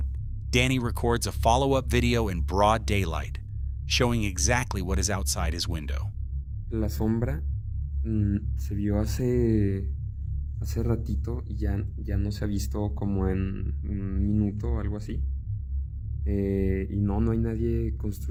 Danny records a follow-up video in broad daylight, showing exactly what is outside his window. La sombra se vio hace ratito y ya no se ha visto como en un minuto o algo así. Y no hay nadie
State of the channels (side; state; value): both; identical; correlation 1.00